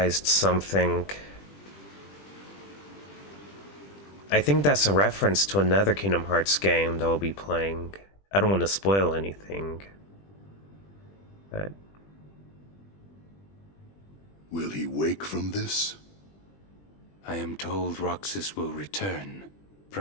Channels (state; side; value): late; right; 20 ms